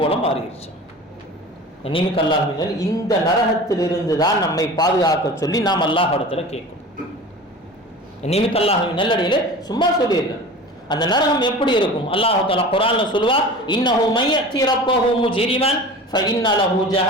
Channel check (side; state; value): both; normal; correlation 0.37